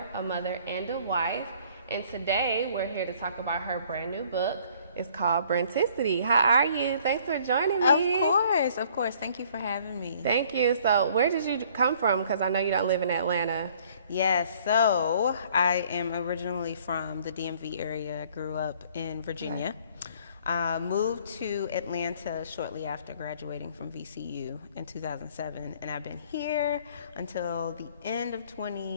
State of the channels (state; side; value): inverted; both; correlation -0.58